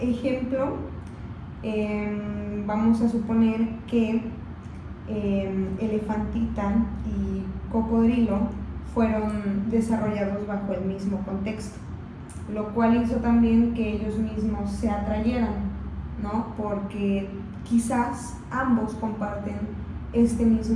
ejemplo, vamos a suponer que Elefantita y Cocodrilo fueron desarrollados bajo el mismo contexto, lo cual hizo también que ellos mismos se atrayeran, ¿no? Porque quizás ambos comparten este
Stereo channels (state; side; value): identical; both; correlation 1.00